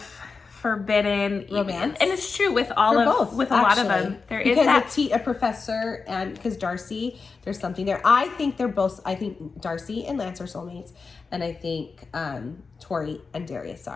forbidden romance. And it's true with a lot of them. There is that. Because a professor and because Darcy, there's something there. I think Darcy and Lance are soulmates. And I think Tori and Darius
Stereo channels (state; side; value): quieter; right; 4.7 dB